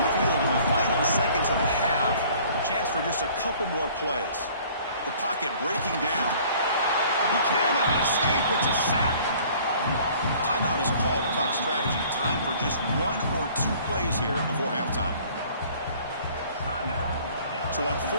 field in the final seconds of the half. Chance for just a couple more plays. The pocket breaking down. He cannot escape. It's a sack. Timeout is called to talk strategy. Time for just 1 or 2 plays here before halftime. So on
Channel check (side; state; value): both; inverted; correlation -0.53